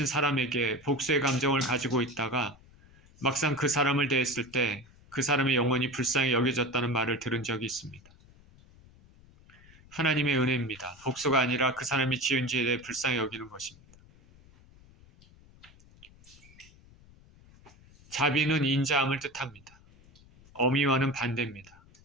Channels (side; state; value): left; noise; rumble, 25 dB below the sound